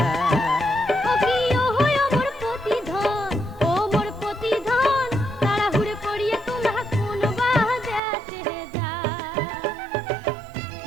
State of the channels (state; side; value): drops out; left; at 8.0 s